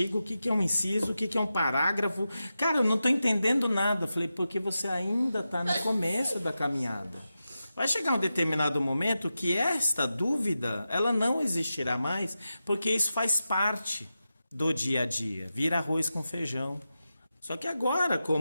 o que é um inciso, o que é um parágrafo? Cara, eu não estou entendendo nada. Eu falei, porque você ainda está no começo da caminhada. Vai chegar um determinado momento que esta dúvida, ela não existirá mais, porque isso faz parte do dia a dia, vira arroz com feijão. Só que agora,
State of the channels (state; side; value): inverted; both; correlation -0.91